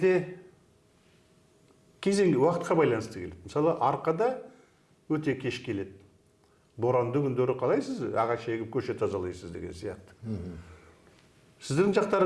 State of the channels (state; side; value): identical; both; correlation 1.00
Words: кезеңге, уақытқа байланысты келеді. Мысалы, арқада өте кеш келеді. Боранды күндері қалайсыз? Ағаш егіп көше тазалайсыз деген сияқты. Сіздің